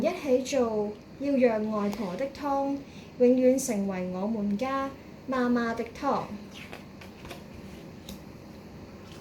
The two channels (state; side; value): identical; both; correlation 1.00